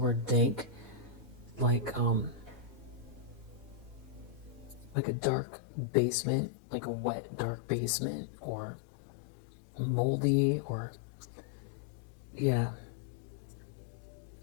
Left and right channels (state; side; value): drops out; right; at 5.0 s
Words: dank, like a dark basement, like a wet dark basement, or moldy, or yeah.